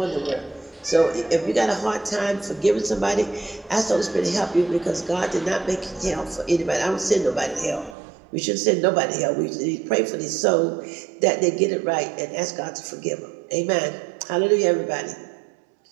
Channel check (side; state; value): left; drops out; at 8.0 s